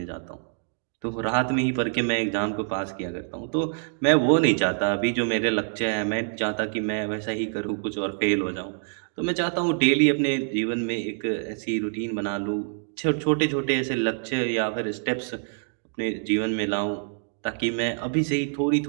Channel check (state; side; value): silent; left; 61 dB below the other